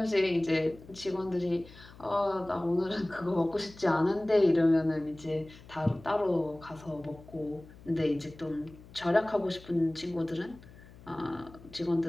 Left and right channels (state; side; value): noise; left; hum, 21 dB below the sound